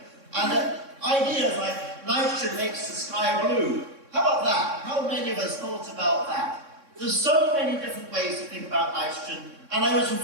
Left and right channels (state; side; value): late; left; 3.6 ms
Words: And ideas like nitrogen makes the sky blue. How about that? How many of us thought about that? There's so many different ways to think about nitrogen. And I was